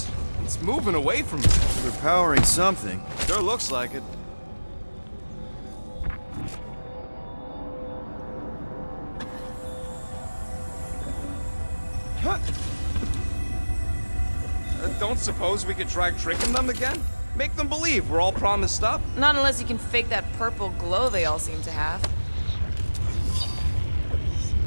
It's moving away from them. They're powering something. Sure looks like it. Don't suppose we could try tricking them again? Make them believe we're all promised up? Not unless you can fake that purple glow they all seem to have.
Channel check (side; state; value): both; inverted; correlation -1.00